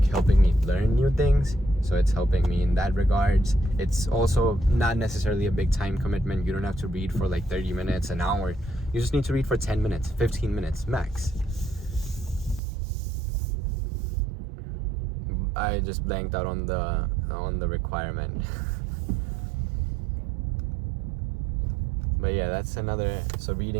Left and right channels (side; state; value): left; drops out; at 12.6 s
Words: helping me learn new things. So it's helping me in that regards. It's also not necessarily a big time commitment. You don't have to read for like 30 minutes, an hour. You just need to read for 10 minutes, 15 minutes max. I just blanked out on the requirement. But yeah, that's another. So